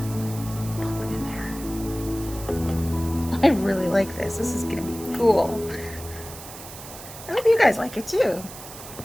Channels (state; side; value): noise; right; hiss, 14 dB below the sound